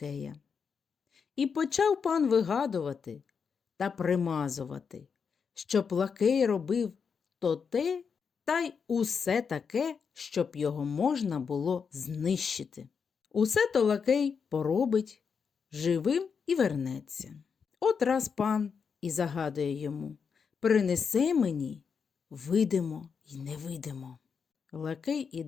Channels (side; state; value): right; quieter; 6.1 dB